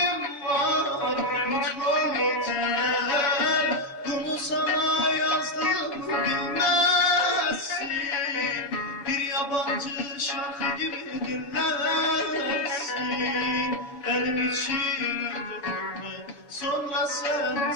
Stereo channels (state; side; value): late; right; 7.1 ms